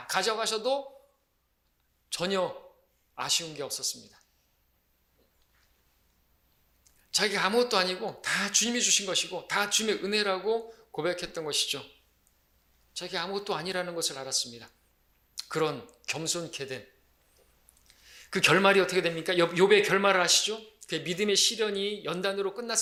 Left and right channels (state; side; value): identical; both; correlation 1.00